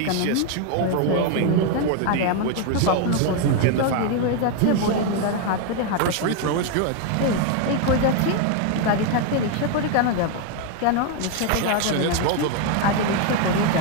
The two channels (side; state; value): both; different; correlation 0.01